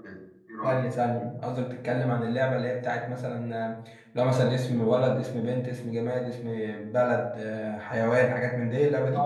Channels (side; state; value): both; identical; correlation 1.00